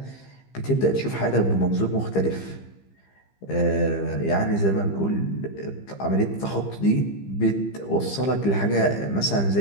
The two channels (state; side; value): late; right; 15 ms